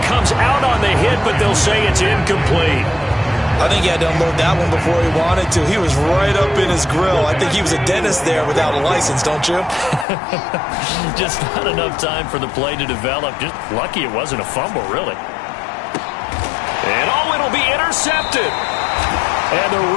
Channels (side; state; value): right; drops out; at 10.1 s